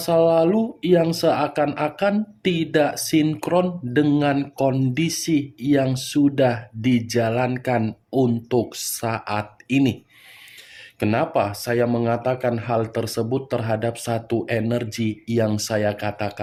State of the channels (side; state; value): both; identical; correlation 1.00